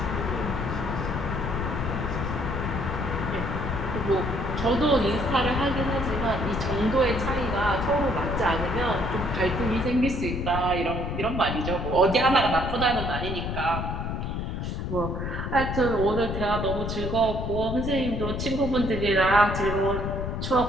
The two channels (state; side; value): noise; left; rumble, 3 dB below the sound